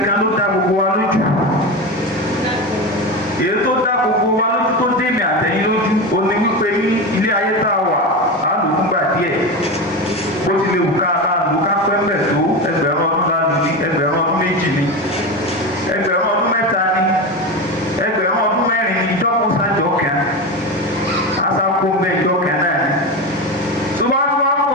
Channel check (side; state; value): both; normal; correlation 0.21